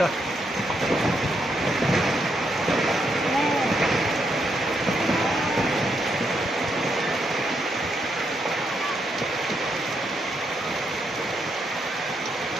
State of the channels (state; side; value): normal; both; correlation 0.79